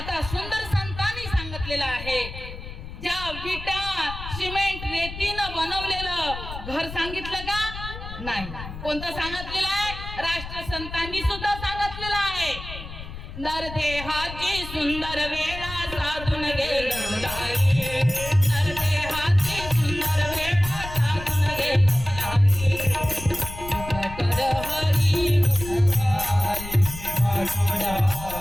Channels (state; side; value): noise; left; rumble, 11 dB below the sound